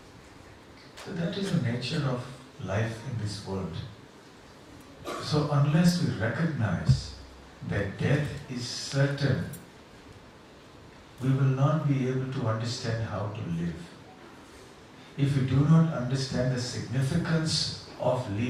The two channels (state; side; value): identical; both; correlation 1.00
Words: So that is the nature of life in this world. So unless we recognize that death is certain, we will not be able to understand how to live. If we do not understand the significance of